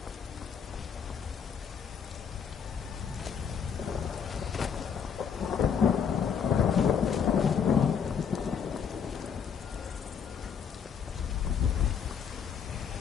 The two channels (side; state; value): right; quieter; 7.1 dB